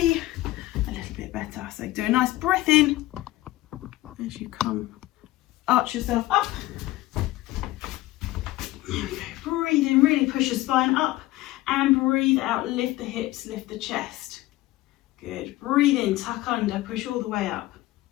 a little bit better. So do a nice breath in as you come, arch yourself up. There we go. Breathe in, really push your spine up, and breathe out, lift the hips, lift the chest. Good. Breathe in, tuck under, push all the way up.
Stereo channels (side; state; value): right; quieter; 17.4 dB